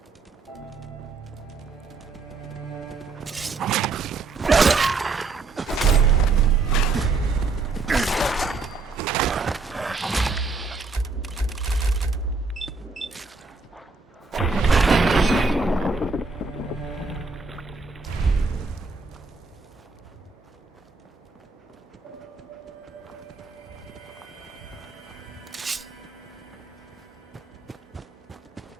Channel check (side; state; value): left; quieter; 4.0 dB